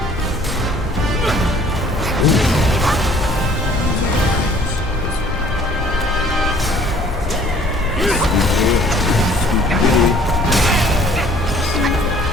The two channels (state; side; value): normal; both; correlation 0.55